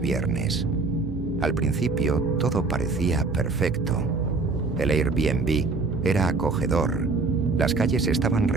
Al principio todo parecía perfecto. El Airbnb era acogedor, las calles estaban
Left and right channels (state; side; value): quieter; left; 3.8 dB